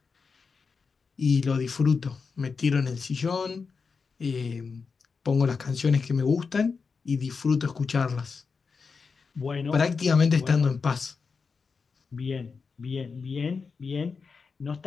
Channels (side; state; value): right; quieter; 5.1 dB